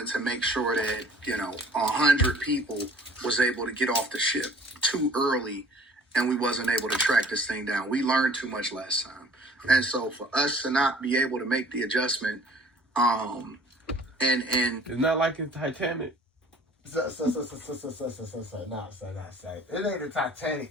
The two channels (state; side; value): normal; both; correlation 0.51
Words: to make sure that, 100 people was able to get off the ship too early and we wasn't able to track this thing down. We learned too much last time. And so for us to not be able to make the adjustment, and it's not like it's Titanic. Nah, say. It ain't the Titanic.